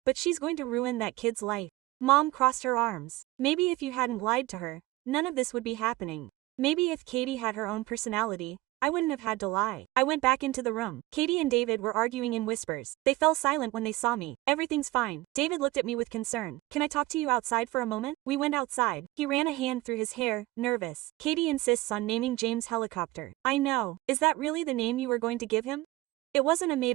but she's going to ruin that kid's life. Mom crossed her arms. Maybe if you hadn't lied to her, none of this would be happening. Maybe if Katie had her own personality, I wouldn't have had to lie. I went back into the room. Katie and David were arguing in whispers. They fell silent when they saw me. Everything's fine. David looked at me with concern. Can I talk to you outside for a moment? We went outside. He ran a hand through his hair, nervous. Katie insists on naming James Helicopter. I know. Is that really the name you were going to give him? It wasn't a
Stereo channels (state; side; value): quieter; left; 19.1 dB